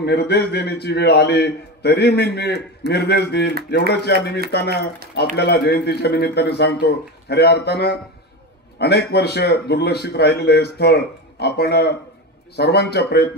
निर्देश देण्याची वेळ आली तरी मी निर्देश देईल एवढंच या निमित्तानं आपल्याला जयंतीच्या निमित्ताने सांगतो. खऱ्या अर्थानं अनेक वर्ष दुर्लक्षित राहिलेलं हे स्थळ आपण सर्वांच्या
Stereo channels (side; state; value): both; normal; correlation 0.21